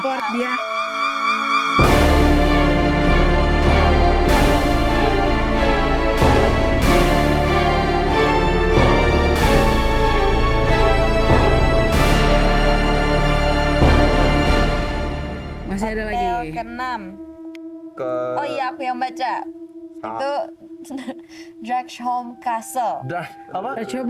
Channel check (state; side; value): identical; both; correlation 1.00